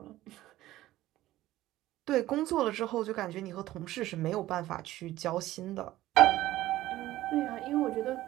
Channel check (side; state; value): left; quieter; 15.5 dB